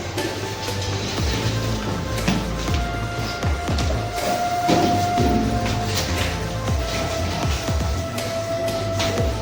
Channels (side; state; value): both; identical; correlation 1.00